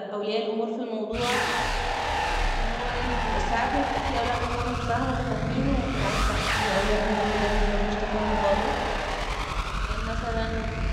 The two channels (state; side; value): identical; both; correlation 1.00